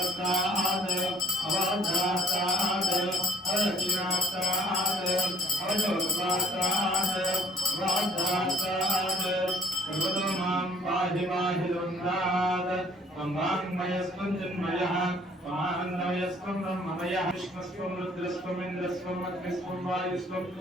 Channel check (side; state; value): both; normal; correlation 0.59